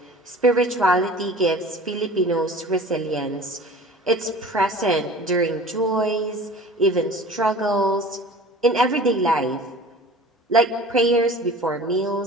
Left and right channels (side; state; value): both; normal; correlation 0.42